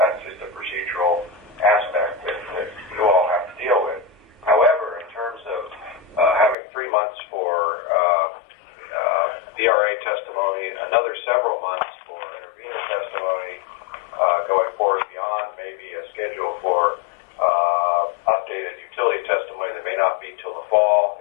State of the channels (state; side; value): drops out; right; at 6.6 s